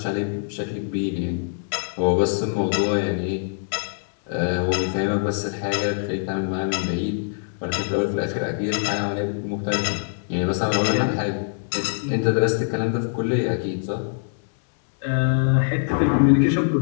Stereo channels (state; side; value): silent; right; digital silence